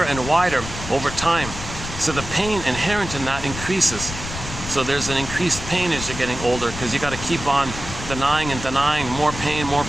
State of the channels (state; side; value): noise; left; rumble, 9 dB below the sound